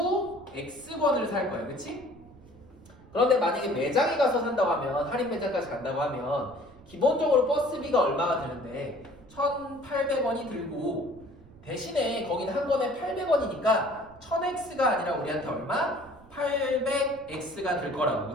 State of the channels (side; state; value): right; noise; rumble, 23 dB below the sound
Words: X권을 살 거야, 그치? 그런데 만약에 매장에 가서 산다고 하면, 할인 매장까지 간다고 하면 기본적으로 버스비가 얼마가 드는데 1,800원이 들고 대신에 거기는 한 권에 800원이니까 1000X가 아니라 우리한테 얼마? 800X가 들 거라고,